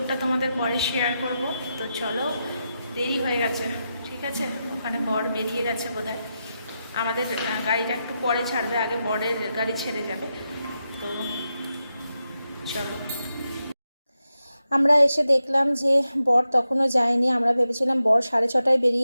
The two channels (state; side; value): inverted; both; correlation -0.88